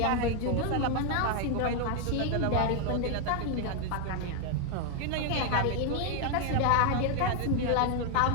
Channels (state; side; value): different; both; correlation 0.01